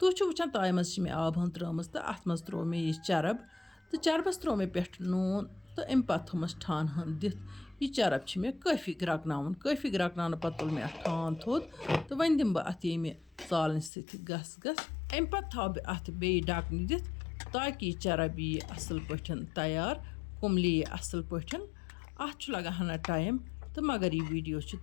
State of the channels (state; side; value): drops out; right; at 13.9 s